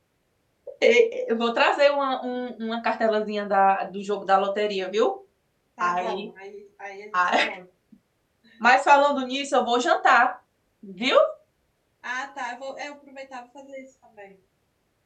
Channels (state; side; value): identical; both; correlation 1.00